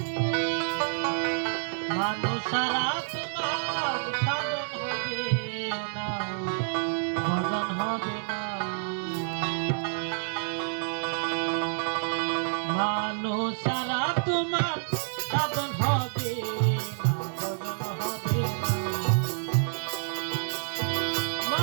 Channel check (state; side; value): silent; left; digital silence